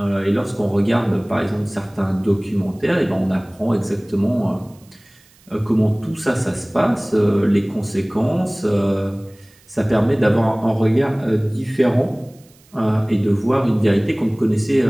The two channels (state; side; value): noise; right; hiss, 29 dB below the sound